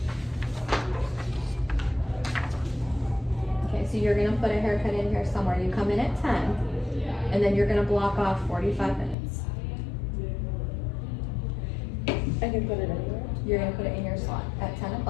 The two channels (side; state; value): right; drops out; at 9.2 s